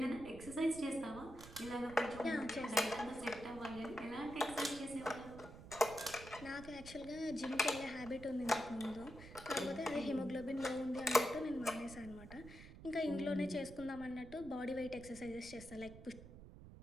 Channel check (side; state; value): right; noise; rumble, 15 dB below the sound